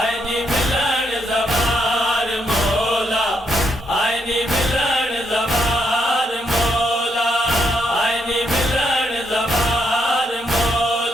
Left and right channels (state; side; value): normal; both; correlation 0.77